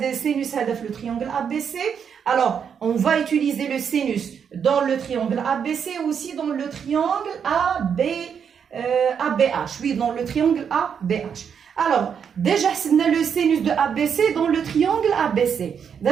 sinus le triangle ABC. Alors, on va utiliser le sinus dans le triangle ABC et aussi dans le triangle ABH. Oui, dans le triangle ABH. Alors, déjà, on a le sinus de ABC dans le triangle ABC.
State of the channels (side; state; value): left; quieter; 7.3 dB